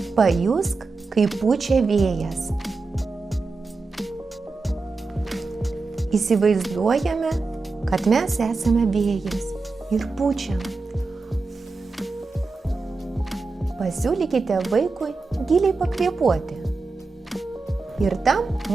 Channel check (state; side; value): quieter; left; 3.8 dB